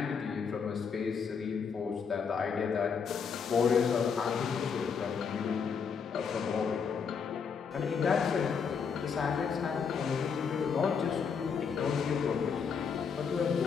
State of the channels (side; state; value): right; quieter; 6.2 dB